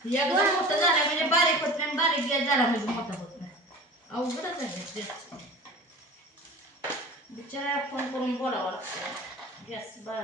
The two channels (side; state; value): both; normal; correlation 0.38